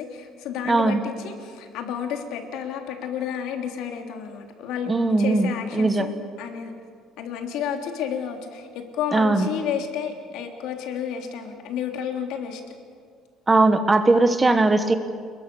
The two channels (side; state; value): both; normal; correlation 0.79